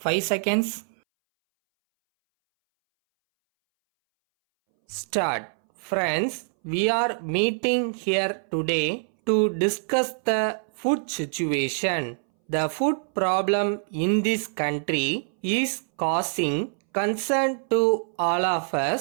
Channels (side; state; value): left; silent; 61 dB below the other